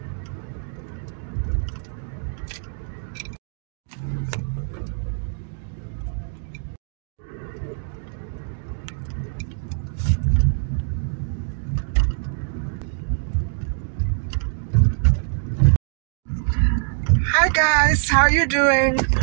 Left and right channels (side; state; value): left; silent; 63 dB below the other